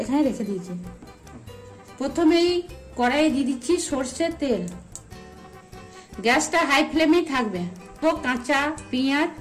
এখানে রেখে দিয়েছি। প্রথমেই কড়াইয়ে দিয়ে দিচ্ছি সর্ষের তেল। গ্যাসটা হাই ফ্লেমেই থাকবে। তো কাঁচা পেঁয়াজ,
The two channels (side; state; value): both; identical; correlation 1.00